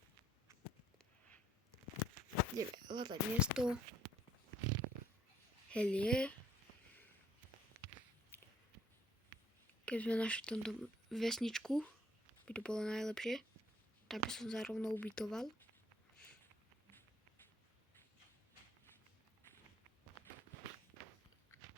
Ideme hľadať miesto. Helie. Keď sme našli tomto vesničku, by to bolo najlepšie. Tak by som sa rovno ubytoval.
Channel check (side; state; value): both; normal; correlation 0.62